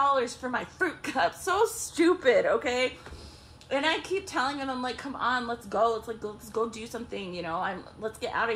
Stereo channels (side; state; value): both; identical; correlation 1.00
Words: for my fruit cup. So stupid, okay? And I keep telling him, I'm like, come on, let's go. Let's go do something, you know. Let's get out